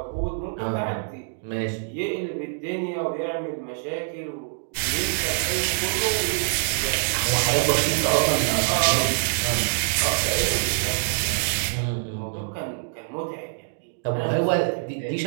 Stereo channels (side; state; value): left; silent; digital silence